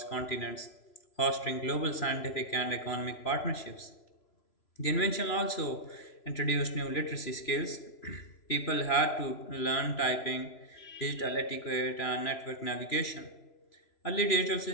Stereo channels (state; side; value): late; right; 3.0 ms